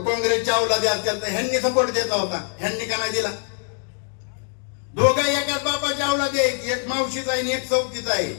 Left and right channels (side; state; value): right; silent; 57 dB below the other